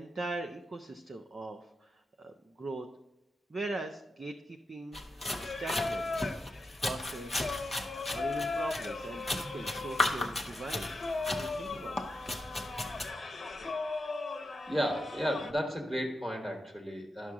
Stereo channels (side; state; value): both; normal; correlation 0.86